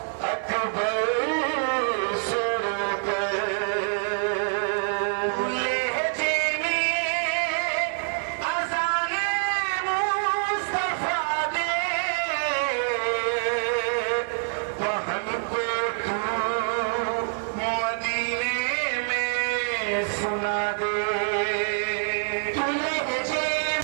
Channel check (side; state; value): left; silent; 61 dB below the other